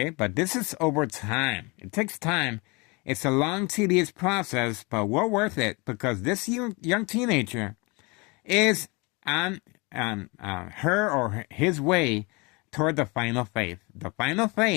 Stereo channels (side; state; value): right; quieter; 28.0 dB